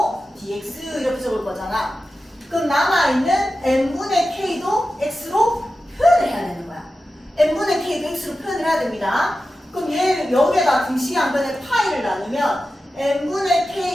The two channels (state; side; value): normal; both; correlation 0.93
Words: dx 이렇게 적을 거잖아. 그럼 남아있는 n분의 k도 x로 표현을 해야 되는 거야. n분의 k도 x로 표현을 해야 됩니다. 그럼 얘 여기에다 등식의 양변에 파이를 나누면 n분의